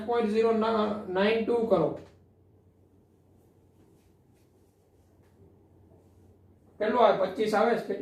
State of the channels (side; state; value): both; identical; correlation 1.00